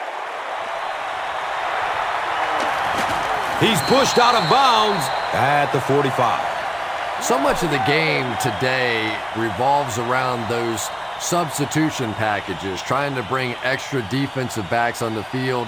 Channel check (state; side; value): identical; both; correlation 1.00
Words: He's pushed out of bounds at the 45. So much of the game today revolves around those substitution packages, trying to bring extra defensive backs on the